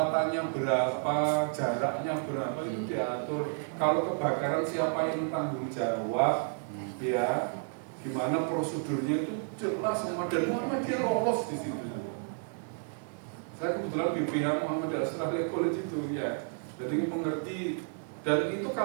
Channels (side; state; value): left; silent; 57 dB below the other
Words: berapa, jaraknya berapa itu diatur. Kalau kebakaran siapa yang tanggung jawab, ya, dimana prosedurnya itu jelas sama dan Muhammadiyah lolos di situ. Saya kebetulan BPH Muhammadiyah Australia College itu ya, jadi mengerti dan itu